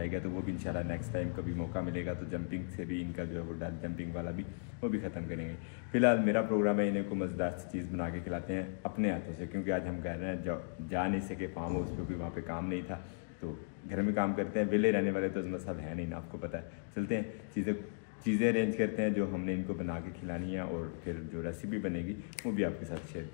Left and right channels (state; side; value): silent; right; digital silence